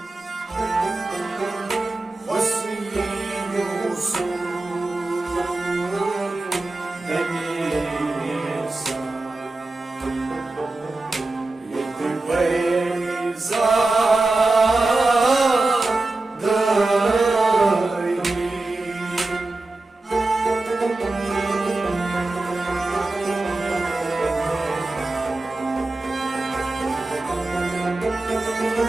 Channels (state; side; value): quieter; left; 3.1 dB